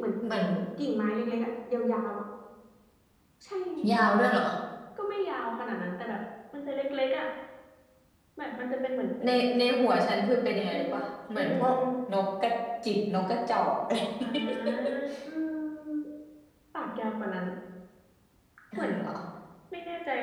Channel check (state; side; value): identical; both; correlation 1.00